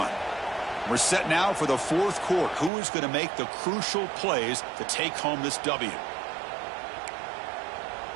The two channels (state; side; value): drops out; left; at 2.7 s